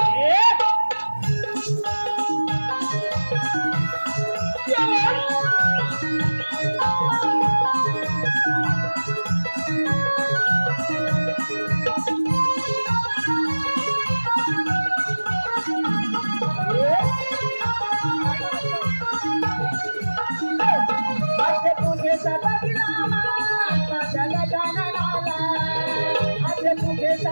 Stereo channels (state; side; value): inverted; both; correlation -1.00